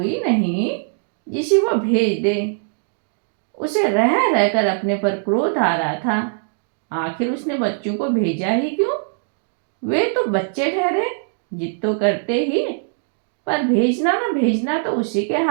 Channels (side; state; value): left; silent; digital silence